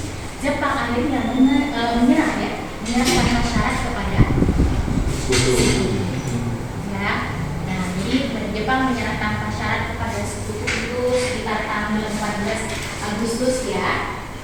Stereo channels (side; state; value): both; identical; correlation 1.00